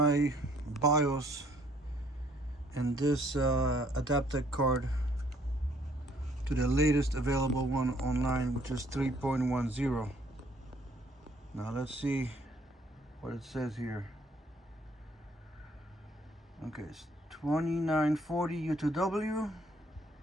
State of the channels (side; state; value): both; normal; correlation 0.63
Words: BIOS and this Adaptec card to the latest available one online, which is 3.10. Now let's see what it says here. Okay, it's 2940U2W,